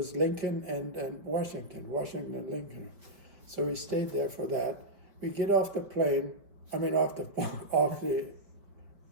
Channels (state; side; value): late; left; 5.1 ms